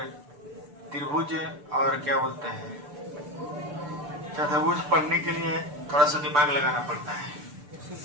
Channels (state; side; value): late; left; 6.9 ms